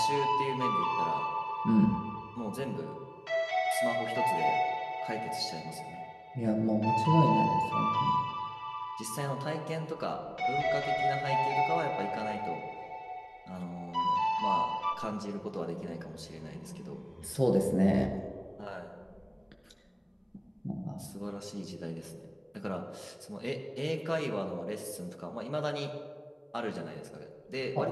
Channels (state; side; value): identical; both; correlation 1.00